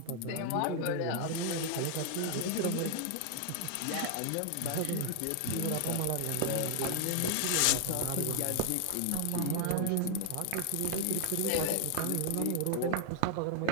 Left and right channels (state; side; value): different; both; correlation 0.00